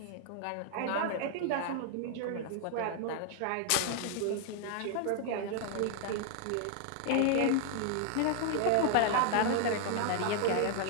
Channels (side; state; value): both; different; correlation 0.00